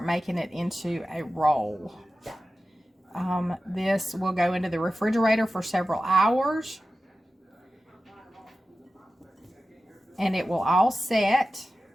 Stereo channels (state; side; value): normal; both; correlation 0.94